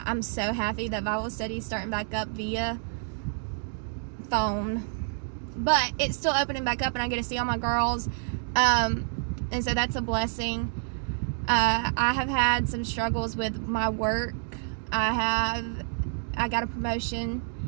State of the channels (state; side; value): silent; left; 59 dB below the other